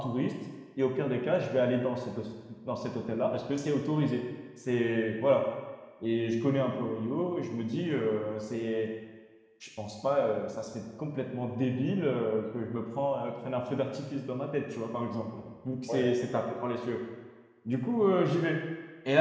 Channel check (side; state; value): both; identical; correlation 1.00